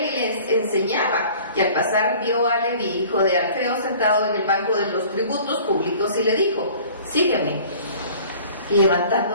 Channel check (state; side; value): inverted; both; correlation -0.48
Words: y le enseñaba. Y al pasar vio a Leví, hijo de Alfeo, sentado en el banco de los tributos públicos, y le dijo: sígueme. Y